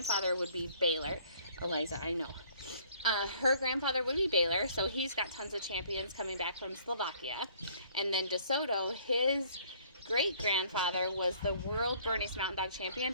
would be Baylor. Eliza, I know. Her grandfather would be Baylor, so he's got tons of champions coming back from Slovakia. And then DeSoto, his great grandfather was the world Bernese Mountain Dog champion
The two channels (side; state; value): both; inverted; correlation -0.58